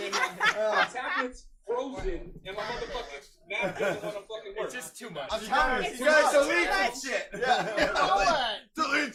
my tablet's frozen, and my motherfucking map doesn't want to fucking work. It's just too much. I'm telling you, It's you guys too delete much. some shit. Yeah. Blow Delete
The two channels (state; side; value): identical; both; correlation 1.00